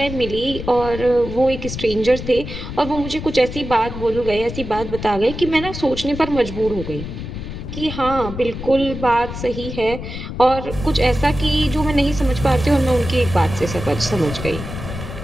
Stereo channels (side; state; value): left; noise; rumble, 8 dB below the sound